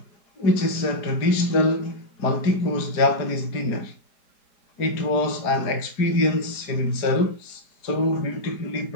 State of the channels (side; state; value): right; late; 4.9 ms